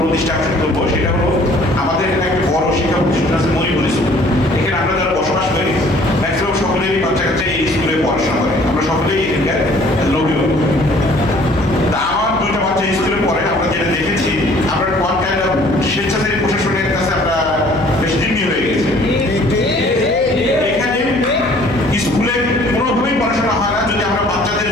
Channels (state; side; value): noise; left; hum, 15 dB below the sound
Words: দৃষ্টি আকর্ষণ করবো, সেটা হলো আমাদের এখানে একটা বড় শিক্ষা প্রতিষ্ঠান আছে মরিপুর স্কুল। এখানে আমরা যারা বসবাস করি ম্যাক্সিমাম সকলেরই বাচ্চা কাচ্চা এই স্কুলে পড়াশোনা করে, আমরা সকলেই এখানকার অভিভাবক। তা আমার